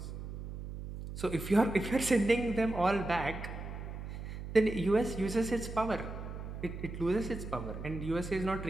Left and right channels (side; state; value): right; noise; hum, 8 dB below the sound